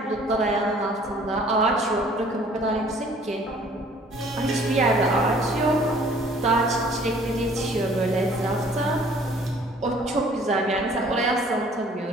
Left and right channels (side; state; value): both; normal; correlation 0.55